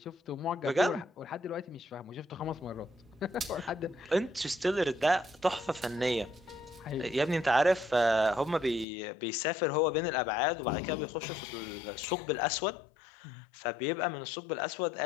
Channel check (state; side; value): drops out; right; at 8.8 s